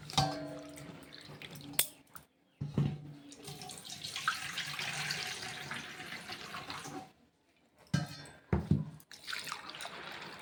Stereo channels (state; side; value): identical; both; correlation 1.00